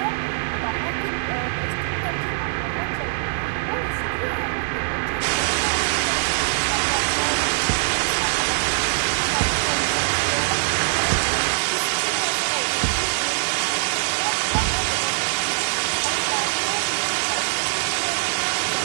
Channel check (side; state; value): left; silent; digital silence